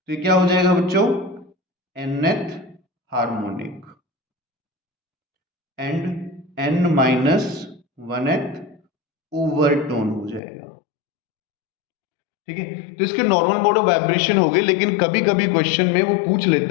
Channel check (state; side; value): drops out; right; at 10.4 s